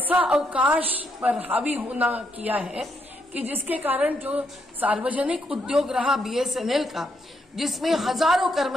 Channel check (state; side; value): normal; both; correlation 0.77